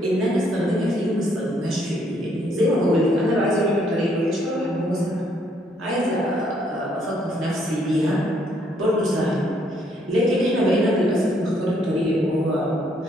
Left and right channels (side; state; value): both; normal; correlation 0.69